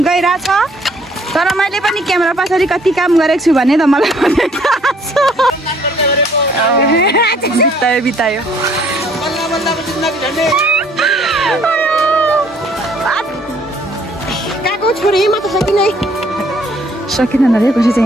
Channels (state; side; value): normal; both; correlation 0.61